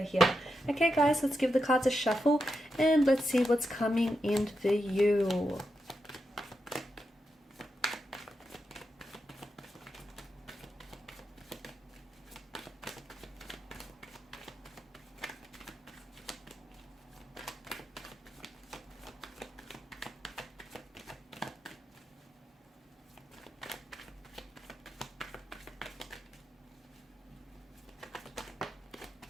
here. Okay guys, let's give the cards a shuffle and let's see what's coming in for you.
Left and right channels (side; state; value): both; normal; correlation 0.87